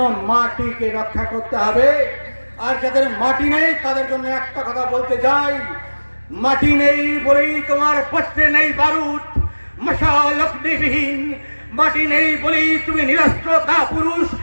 মাটিকে রক্ষা করতে হবে। আর যাদের মাটি নেই তাদের জন্য একটা কথা বলতে যাই, মাটি নেই বলেই তোমার পত্রে নেই বারুদ, মশাল অগ্নিবিহীন মাটি নেই বলেই তুমি নিরস্ত্র কাপুরুষ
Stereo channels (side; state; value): both; inverted; correlation -1.00